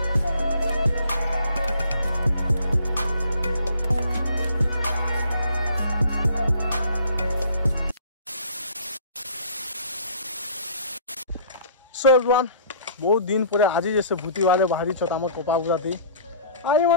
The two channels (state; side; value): inverted; both; correlation -0.52